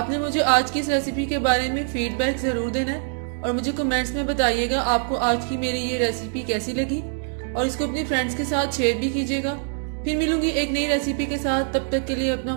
मुझे आज की इस रेसिपी के बारे में फीडबैक जरूर देना है और मुझे कमेंट्स में बताइएगा आपको आज की मेरी ये रेसिपी कैसी लगी और इसको अपने फ्रेंड्स के साथ शेयर भी कीजिएगा। फिर मिलूंगी एक नई रेसिपी के साथ। तब तक के लिए अपना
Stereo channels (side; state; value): left; silent; 56 dB below the other